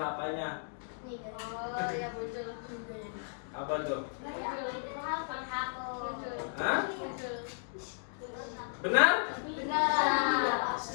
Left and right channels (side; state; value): right; silent; digital silence